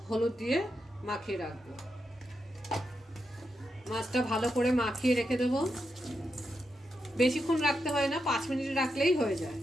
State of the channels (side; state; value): both; normal; correlation 0.85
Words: हलुद दिए माखिए राखबो। মাছটা ভালো করে মাখিয়ে রেখে দেব। বেশিক্ষণ রাখতে হয় না, 5 মিনিট রাখলেই হয়ে যায়।